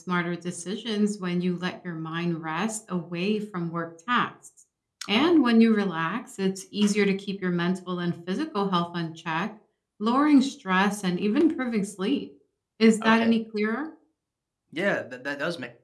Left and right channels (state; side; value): identical; both; correlation 1.00